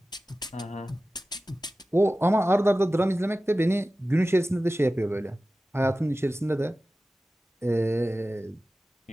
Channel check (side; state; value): both; normal; correlation 0.95